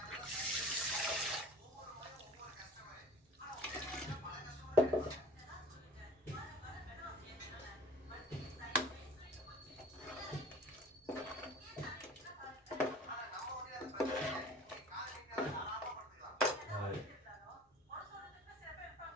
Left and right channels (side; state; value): both; normal; correlation 0.43